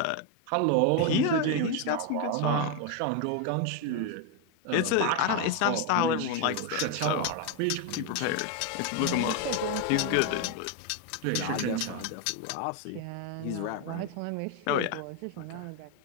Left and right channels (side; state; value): both; different; correlation 0.01